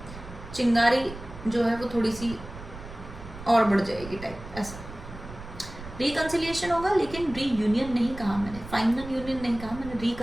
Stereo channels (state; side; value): noise; right; rumble, 13 dB below the sound